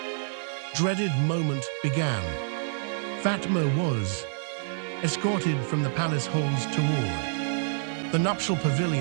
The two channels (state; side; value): silent; left; digital silence